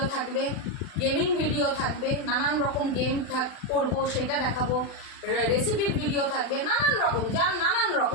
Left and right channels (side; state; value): right; late; 40 ms